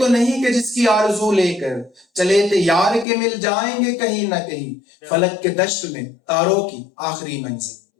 نہیں کہ جس کی آرزو لے کر چلے تھے یار کے مل جائیں گے کہیں نہ کہیں فلک کے دشت میں تاروں کی آخری منزل.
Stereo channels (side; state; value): right; drops out; at 3.1 s